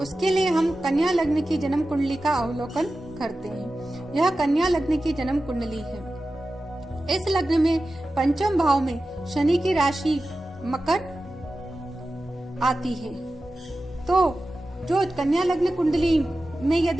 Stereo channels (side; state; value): both; normal; correlation 0.94